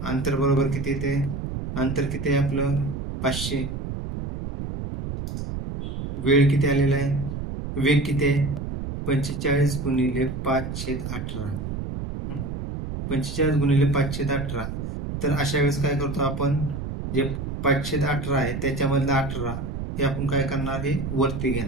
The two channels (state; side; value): noise; right; rumble, 5 dB below the sound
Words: अंतर बरोबर किती येते? अंतर किती आहे आपलं? 500. वेळ किती आलेला आहे? वेग किती आहे? 45 गुणिले 518. 45 गुणिले 518. तर अशा वेळेस काय करतो आपण? जे 518 आहे त्याच्यामधलं 18 हे आपण काय करणार? हे वरती